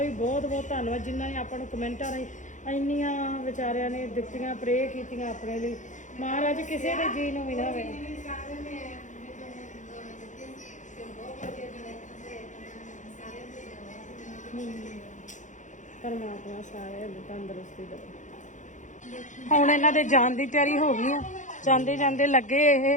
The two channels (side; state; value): right; late; 0.36 ms